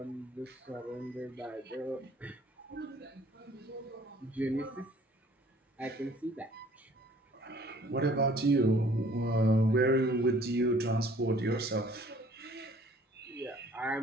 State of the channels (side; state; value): both; normal; correlation 0.56